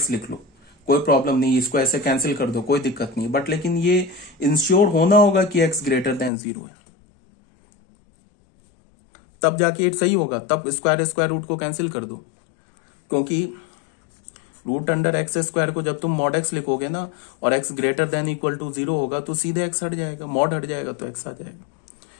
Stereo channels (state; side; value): drops out; right; at 6.3 s